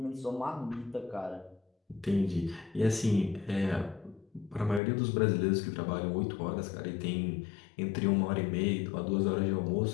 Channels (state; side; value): drops out; right; at 4.8 s